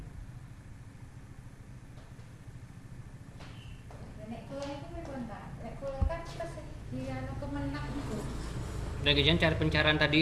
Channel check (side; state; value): both; identical; correlation 1.00